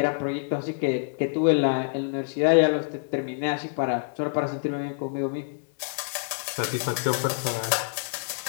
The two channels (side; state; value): right; silent; digital silence